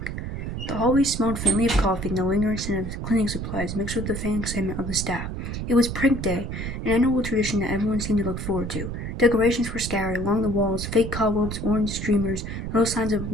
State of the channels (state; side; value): noise; right; rumble, 5 dB below the sound